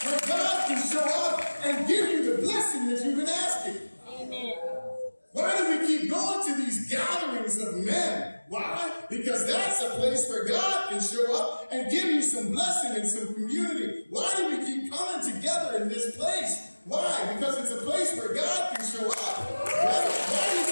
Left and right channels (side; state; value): both; inverted; correlation -1.00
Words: where God can show up and give you the blessing that you've been asking? Amen. Why do we keep going to these gatherings of men? Why? Because that's a place where God can show up and give you some blessing and some community. Why do we keep coming together in this place? Why? Because it's a place where God can show up. Why do you